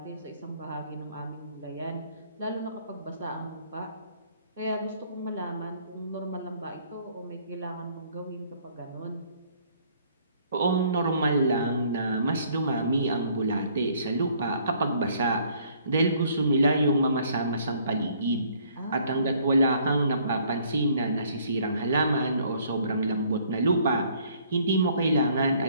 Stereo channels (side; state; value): both; inverted; correlation -0.61